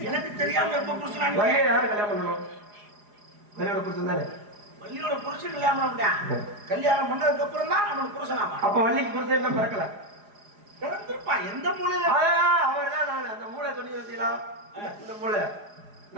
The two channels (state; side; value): late; left; 4.9 ms